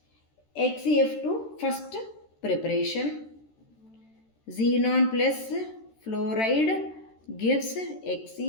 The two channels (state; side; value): late; right; 13 ms